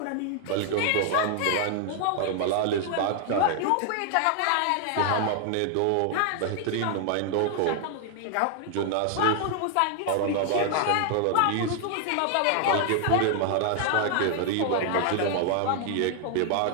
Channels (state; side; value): different; both; correlation 0.00